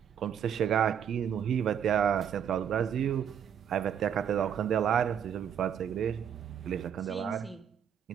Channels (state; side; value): quieter; left; 8.5 dB